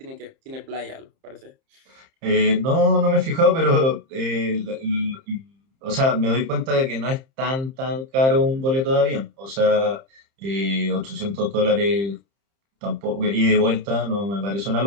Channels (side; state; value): left; late; 30 ms